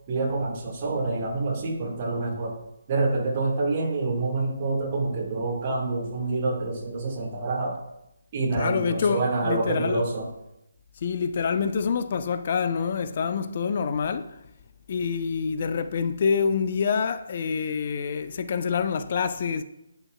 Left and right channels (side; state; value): both; inverted; correlation -0.73